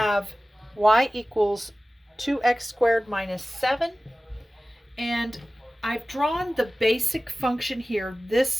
y equals 2x squared minus 7. And I've drawn the basic function here.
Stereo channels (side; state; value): both; normal; correlation 0.96